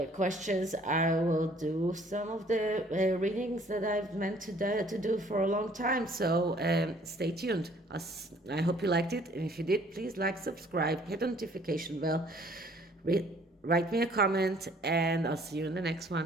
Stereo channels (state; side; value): normal; both; correlation 0.58